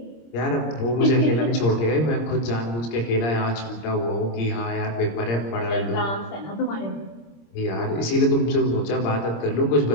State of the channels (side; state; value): right; late; 26 ms